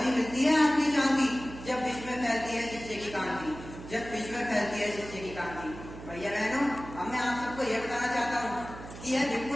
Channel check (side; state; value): right; noise; hum, 13 dB below the sound